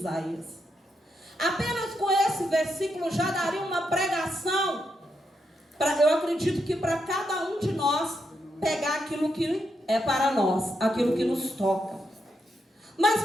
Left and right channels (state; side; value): normal; both; correlation 0.82